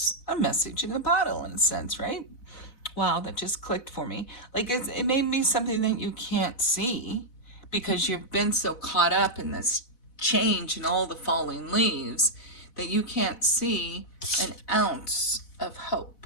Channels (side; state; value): right; late; 4.1 ms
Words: a message in a bottle in a sense, right? Wow, that just clicked for me. Like it may be something that you can't see because you've been so caught up in this change and all the falling leaves that you can't see an ounce of hope.